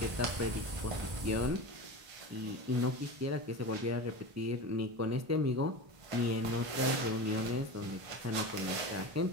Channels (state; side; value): late; left; 1.5 ms